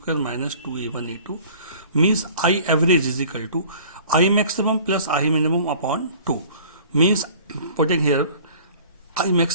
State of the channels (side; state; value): both; inverted; correlation -0.48